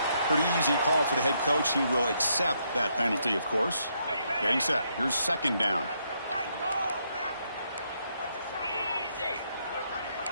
Pretty easy call for the head coach. He will accept that penalty, of course. Getting set. Here's second down.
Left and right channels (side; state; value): both; inverted; correlation -0.76